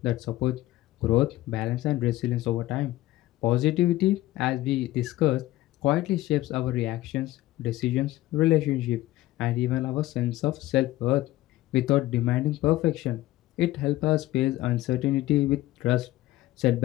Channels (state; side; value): quieter; right; 16.4 dB